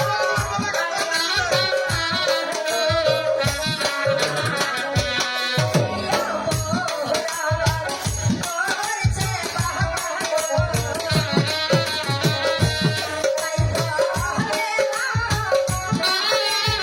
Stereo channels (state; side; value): identical; both; correlation 1.00